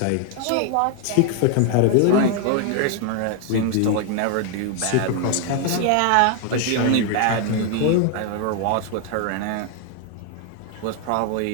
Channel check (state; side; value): different; both; correlation 0.00